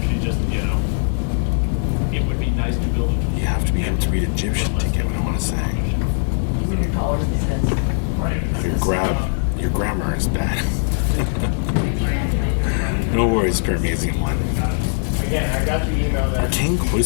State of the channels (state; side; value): silent; right; digital silence